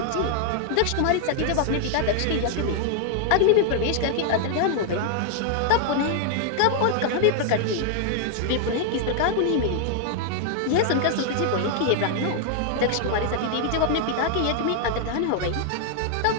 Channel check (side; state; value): both; different; correlation 0.00